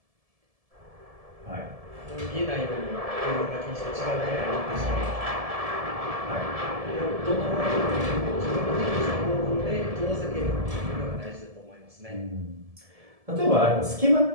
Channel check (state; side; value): late; left; 1.7 ms